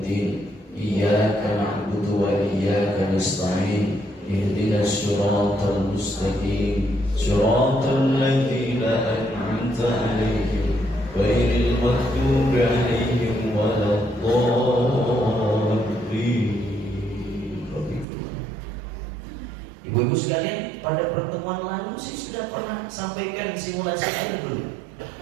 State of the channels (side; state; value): left; drops out; at 18.1 s